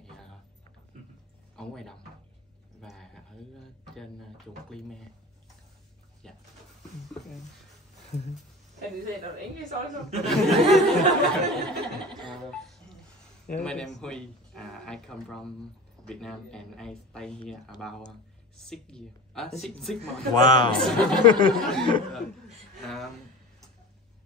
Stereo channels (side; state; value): both; normal; correlation 0.34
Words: đồng và ở trên chuồng Klima. Dạ. Okay. Can you say it in English also? My name is Huy. I come from Vietnam and I stay here about 6 years. 6 months. Wow.